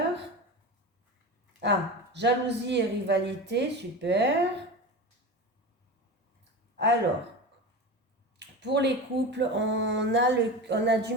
Ah, jalousie et rivalité, super. Alors, pour les couples, on a du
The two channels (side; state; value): both; normal; correlation 0.28